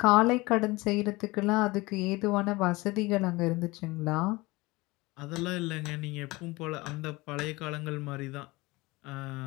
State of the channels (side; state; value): right; quieter; 22.3 dB